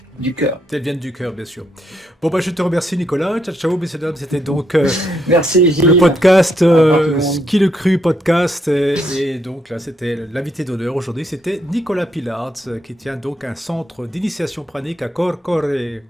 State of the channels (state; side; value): normal; both; correlation 0.76